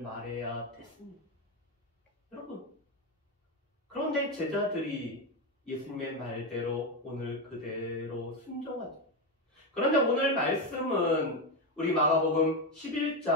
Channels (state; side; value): normal; both; correlation 0.11